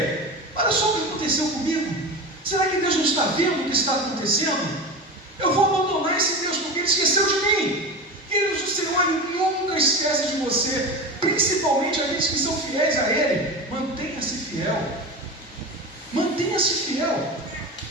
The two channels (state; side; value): normal; both; correlation 0.26